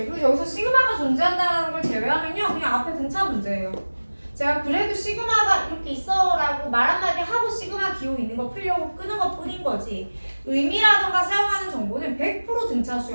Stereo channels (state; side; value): inverted; both; correlation -1.00